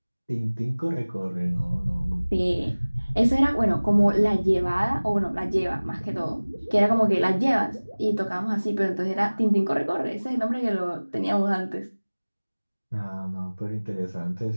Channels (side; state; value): both; inverted; correlation -1.00